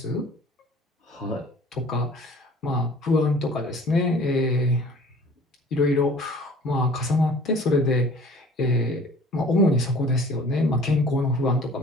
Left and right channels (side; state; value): both; normal; correlation 0.49